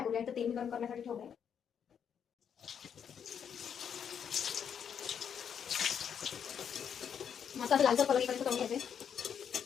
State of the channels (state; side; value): quieter; right; 7.9 dB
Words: करूया. तर तेल मी गरम करण्यासाठी ठेवलंय. मस्त असं लालसर कलर इकडे करून घ्यायचे.